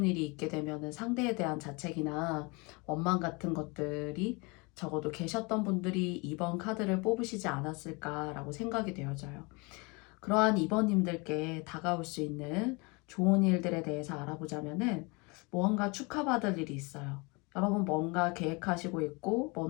일이 있게 되면은 상대에 대한 자책이나 원망 같은 것들이 적어도 계셨던 분들이 2번 카드를 뽑으시지 않았을까라고 생각이 되어져요. 그러한 2번님들께 다가올 수 있는 좋은 일들에 대해서 알아보자면은 무언가 축하받을 일이 있어요. 여러분 뭔가 계획하시고 있고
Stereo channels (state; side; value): quieter; right; 28.3 dB